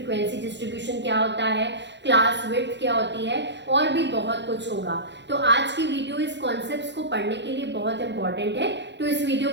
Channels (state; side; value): late; left; 0.52 ms